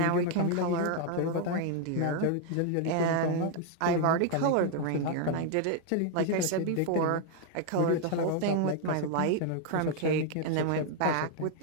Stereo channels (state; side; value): different; both; correlation 0.00